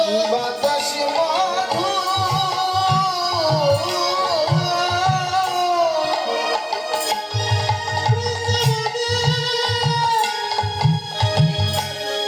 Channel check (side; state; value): both; identical; correlation 1.00